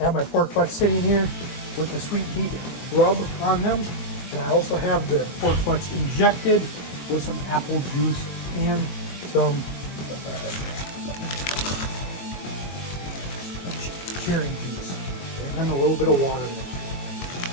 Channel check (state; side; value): late; right; 22 ms